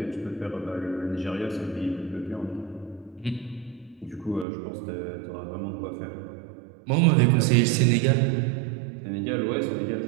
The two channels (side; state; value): left; drops out; at 4.5 s